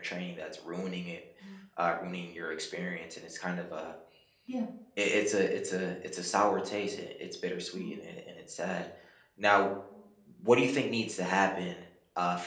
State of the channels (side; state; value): both; identical; correlation 1.00